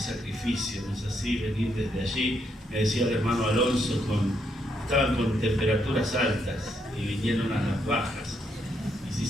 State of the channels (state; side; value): normal; both; correlation 0.76